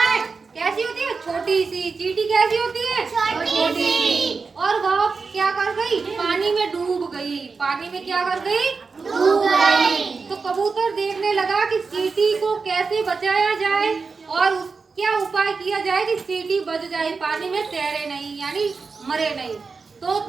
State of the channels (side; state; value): left; quieter; 4.6 dB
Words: कैसी होती है? छोटी सी। चींटी कैसी होती है? छोटी सी। और वह क्या कर गई? पानी में डूब गई। पानी में क्या कर गई? डूब गई। तो कबूतर देखने लगा कि चींटी को कैसे बचाया जाए और क्या उपाय किया जाए कि चींटी बच जाए, पानी में तैरे नहीं, यानी मरे नहीं। तो